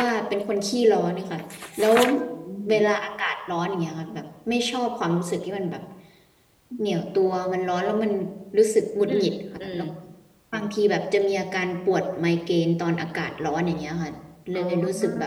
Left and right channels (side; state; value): both; identical; correlation 1.00